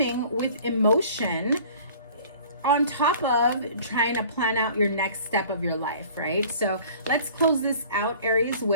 with emotion on top of trying to plan out your next step of your life, right? So let's close this out, Aries,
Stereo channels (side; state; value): both; inverted; correlation -0.48